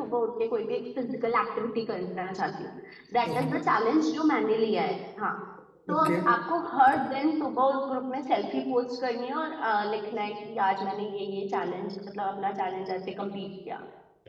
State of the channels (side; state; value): both; identical; correlation 1.00